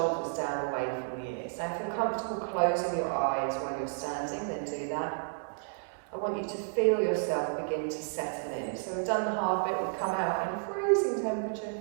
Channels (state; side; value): silent; left; digital silence